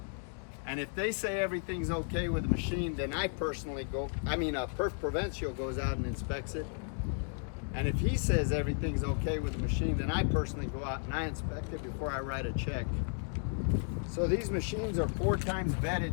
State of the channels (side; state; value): right; silent; 55 dB below the other